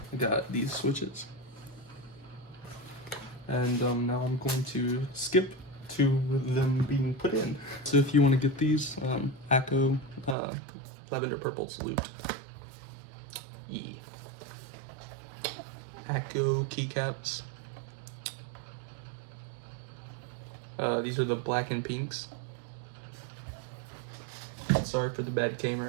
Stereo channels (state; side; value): drops out; left; at 10.4 s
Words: got these switches. And now I'm going to skip to them being put in. So if you want to get these, AKKO Lavender Purple's looped. AKKO Keycaps. These are the black and pinks. Sorry for the bad